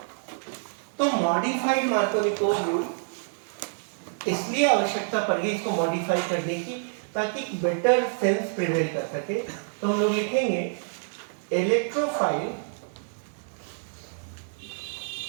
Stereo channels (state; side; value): silent; left; digital silence